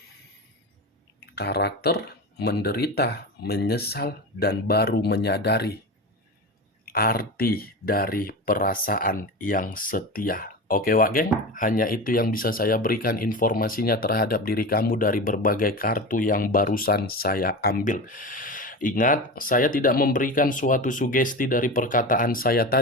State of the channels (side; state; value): both; normal; correlation 0.26